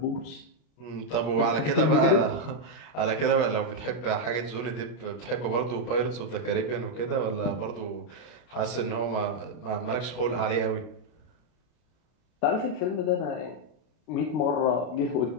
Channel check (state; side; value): late; right; 32 ms